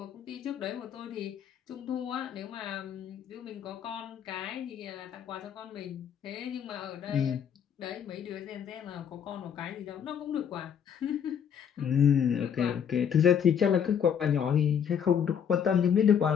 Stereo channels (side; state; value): right; quieter; 8.1 dB